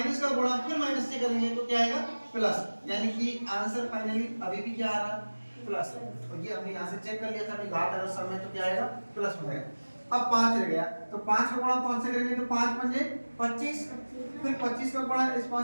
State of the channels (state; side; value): inverted; both; correlation -1.00